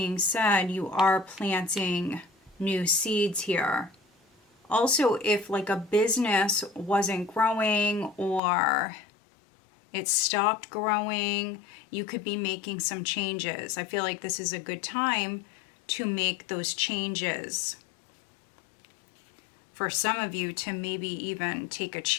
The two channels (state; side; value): drops out; right; at 8.4 s